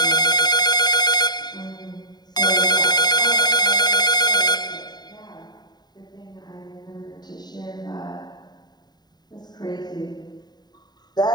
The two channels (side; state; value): right; late; 0.20 ms